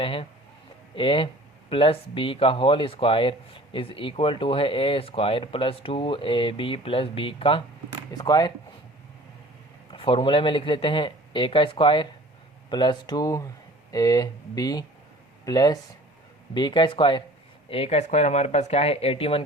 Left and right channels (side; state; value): both; normal; correlation 0.46